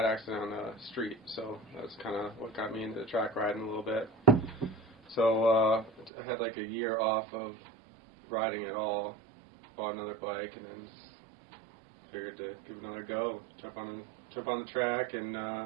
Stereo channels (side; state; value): left; drops out; at 6.1 s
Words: accident on the street, so that's kind of what got me into track riding a little bit. So I had like a year off of riding at all, bought another bike, and then figured to give it another go. Jump on the track, and a